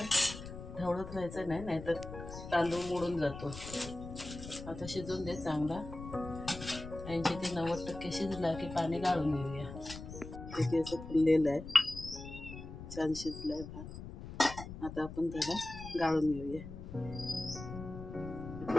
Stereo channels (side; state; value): left; noise; rumble, 11 dB below the sound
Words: ढवळत राहायचं नाही, नाहीतर तांदूळ मोडून जातो. आता शिजून दे चांगला. 80 ते 90% शिजला की पाणी गाळून घेऊया. किती असं फुललेलं आहे, छान शिजलाय भात. आता आपण त्याला गाळून घेऊया.